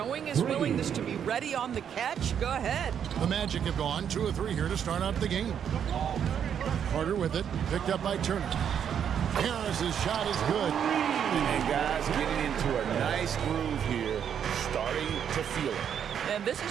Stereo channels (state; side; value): quieter; left; 8.4 dB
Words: his willingness to be ready on the catch. Go ahead. The Magic have gone 2 of 3 here to start out the game. Carter with it, picked up by Turner. Harris's shot is good. And guys getting into a nice groove here, starting to feel it. And this